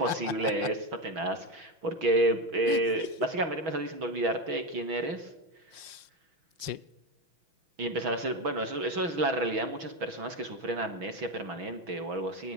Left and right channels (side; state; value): left; late; 5.6 ms